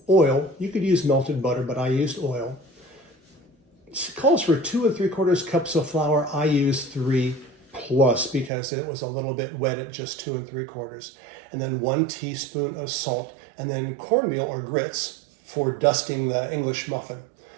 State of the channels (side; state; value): left; drops out; at 8.5 s